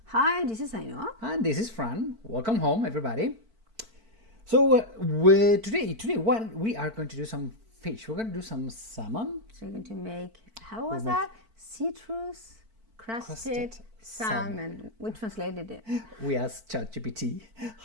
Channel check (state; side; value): late; left; 4.5 ms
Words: Hi, this is Ainhoa. And this is Fran. Welcome home everybody. So today what we are going to do some fish. We're going to do some salmon. So we're going to make, how was that? Citrus crusted salmon. We translated it. We asked ChatGPT